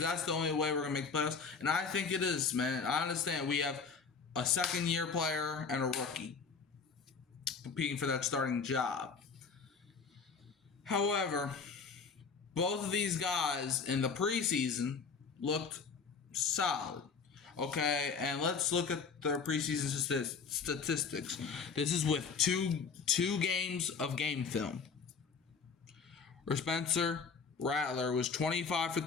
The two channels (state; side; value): quieter; right; 5.4 dB